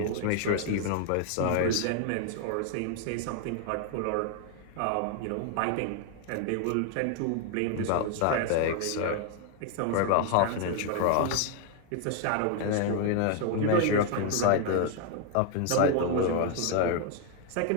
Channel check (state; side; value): different; both; correlation 0.00